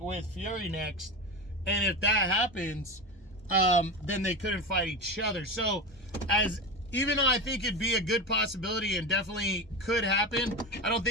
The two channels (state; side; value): normal; both; correlation 0.23